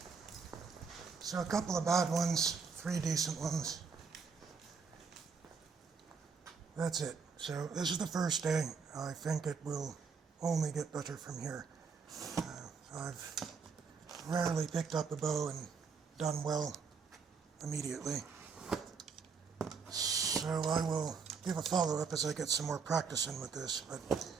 So a couple of bad ones, 3 decent ones. That's it. So this is the first day. I think it will only get better from here. I've rarely picked up a bow and done well immediately. So I will give a follow-up as I get some more practice in with this, but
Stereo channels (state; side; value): quieter; left; 5.5 dB